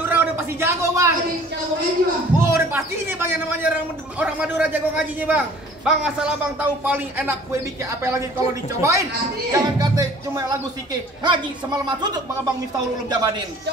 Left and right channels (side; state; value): both; normal; correlation 0.51